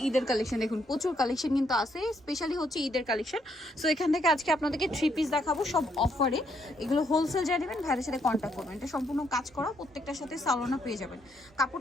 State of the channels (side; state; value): both; normal; correlation 0.74